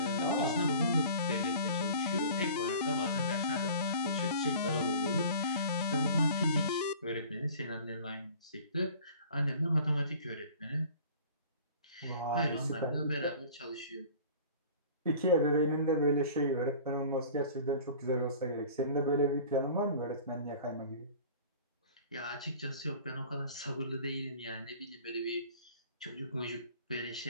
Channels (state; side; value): inverted; both; correlation -0.44